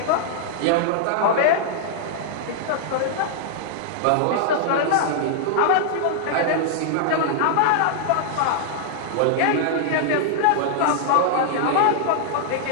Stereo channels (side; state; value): both; different; correlation -0.01